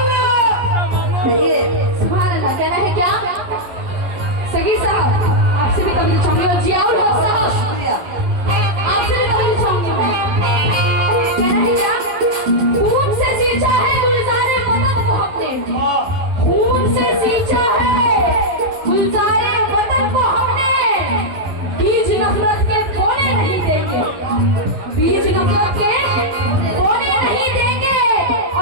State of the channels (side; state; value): left; late; 11 ms